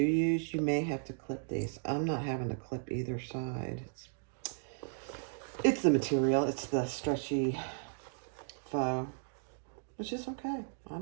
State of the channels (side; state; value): left; silent; digital silence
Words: use, you may have to clip these. I'm not having to clip either side. It's the material. It's the stretchy faux, which is okay. I